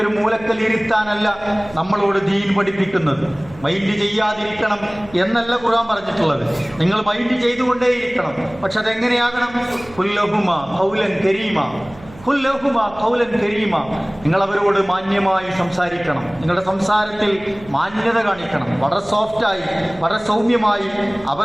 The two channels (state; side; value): noise; right; hum, 20 dB below the sound